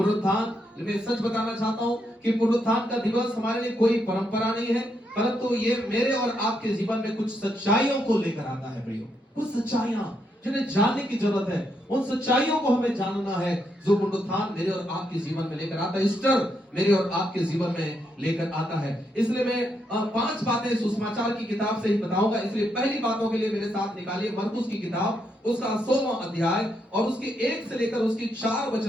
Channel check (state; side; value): normal; both; correlation 0.79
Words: मैं सच बताना चाहता हूं कि पुनरुत्थान का दिवस हमारे लिए कोई परंपरा नहीं है, परंतु ये मेरे और आपके जीवन में कुछ सच्चाइयों को लेकर आता है प्रियो। कुछ सच्चाइयां जिन्हें जानने की जरूरत है, उन सच्चाइयों को हमें जानना है जो पुनरुत्थान मेरे और आपके जीवन में लेकर आता है, ईस्टर मेरे और आपके जीवन में लेकर आता है। इसलिए मैं 5 बातें सुसमाचार की किताब से ही बताऊंगा। इसलिए पहली बातों के लिए मेरे साथ निकालिए मरकुस की किताब, उसका 16वां अध्याय और उसके 1 से लेकर उसकी 4